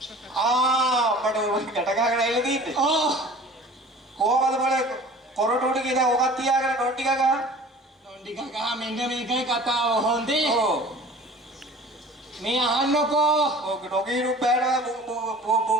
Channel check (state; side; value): normal; both; correlation 0.44